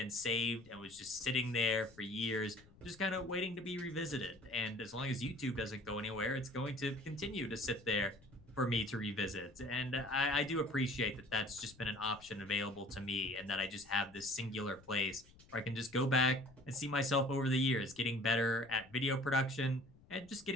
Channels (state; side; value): noise; left; rumble, 25 dB below the sound